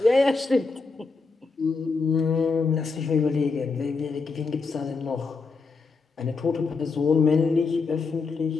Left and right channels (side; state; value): right; quieter; 4.4 dB